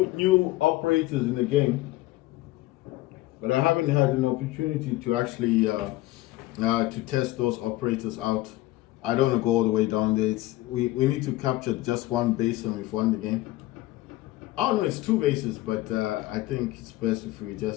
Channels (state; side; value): quieter; right; 17.8 dB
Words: new operators in the game, but I haven't had an opportunity to actually to test those operators out. I don't want to go all the way down there. We need to capture just one base and we've won the game. Oh no, it's two bases, but I think it's best if we